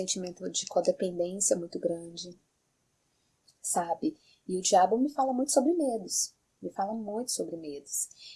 de codependência muito grande, sabe? E o diabo me fala muito sobre medos. Me fala muito sobre medos.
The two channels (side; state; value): both; identical; correlation 1.00